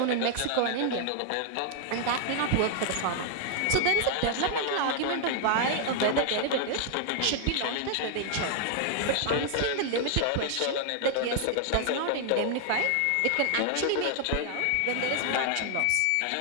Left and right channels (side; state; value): both; different; correlation 0.00